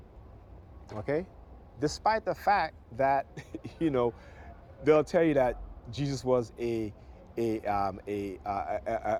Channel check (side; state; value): both; identical; correlation 1.00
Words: Okay? Despite the fact that, they'll tell you that Jesus was a